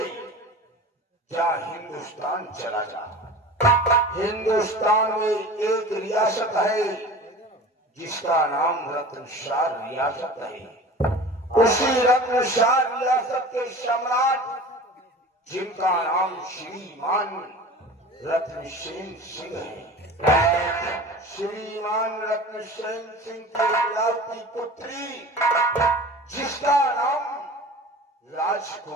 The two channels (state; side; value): normal; both; correlation 0.38